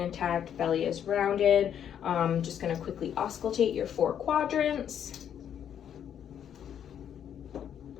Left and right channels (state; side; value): quieter; right; 9.2 dB